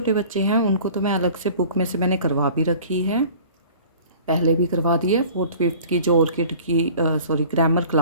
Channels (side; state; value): both; inverted; correlation -0.46